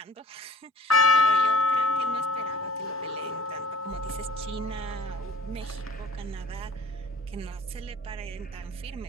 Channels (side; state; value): both; normal; correlation 0.48